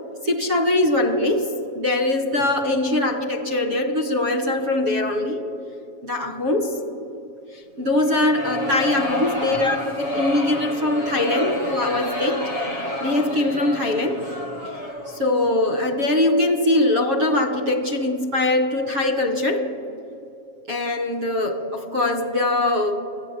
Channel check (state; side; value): late; left; 7.3 ms